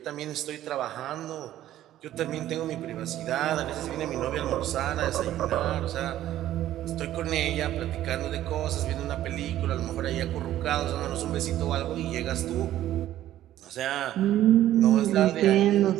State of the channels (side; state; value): left; quieter; 13.1 dB